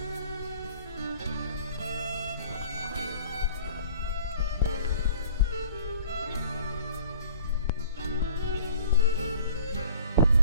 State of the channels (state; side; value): inverted; both; correlation -0.51